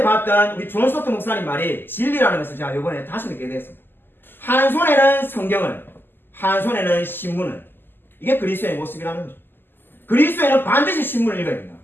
봤던 우리 존 스토트 목사님 말이 진리라는 것을 제가 이번에 다시 느끼게 되었습니다. 한 손에는 성경을, 한 손에는 신문을. 이게 그리스도의 모습이라는 거죠. 그리스도인은 반드시 신문을 읽어야 된다.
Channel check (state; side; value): late; right; 0.097 ms